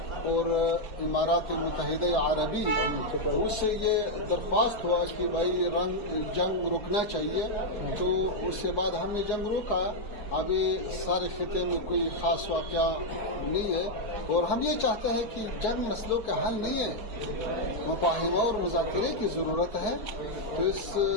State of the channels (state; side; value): late; right; 4.7 ms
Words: اور امارات متحدہ عربی، اس سے یہ درخواست ہوا کہ بھائی جنگ رکنا چاہیے. تو اس کے بعد ہم نے جنگ روکا. ابھی سارے خطے میں کوئی خاص واقعہ نہیں ہے اور ہم یہ چاہتے ہیں کہ جنگ مسئلوں کا حل نہیں ہے، مفاہمہ اور مذاکرے کی ضرورت ہے. تو اس